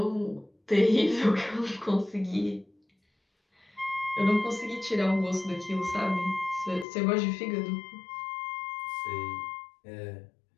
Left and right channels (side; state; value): right; drops out; at 6.9 s